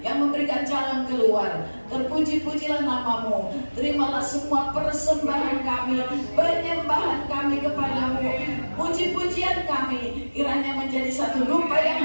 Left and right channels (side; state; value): both; inverted; correlation -1.00